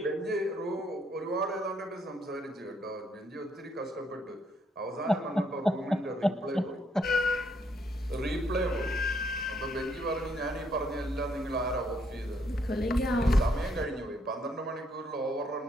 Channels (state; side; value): normal; both; correlation 0.72